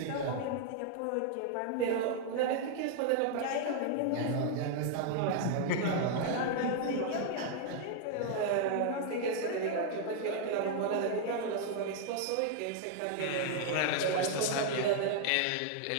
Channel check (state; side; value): different; both; correlation 0.00